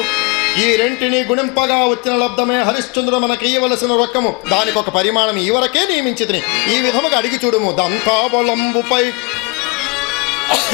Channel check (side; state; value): right; quieter; 28.2 dB